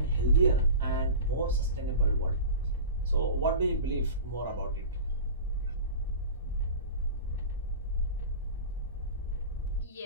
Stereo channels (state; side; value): inverted; both; correlation -0.32